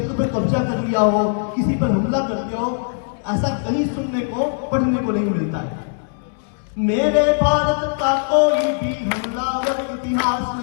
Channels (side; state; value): right; silent; 65 dB below the other